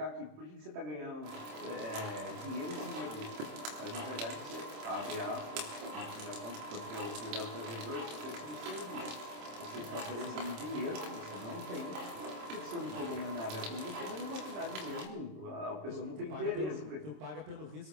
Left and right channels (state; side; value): late; left; 27 ms